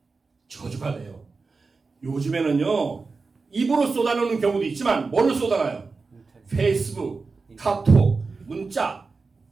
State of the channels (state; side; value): quieter; left; 4.3 dB